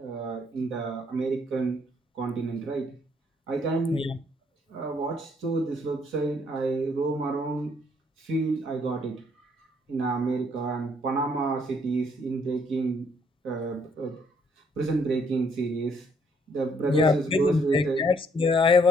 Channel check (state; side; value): normal; both; correlation 0.67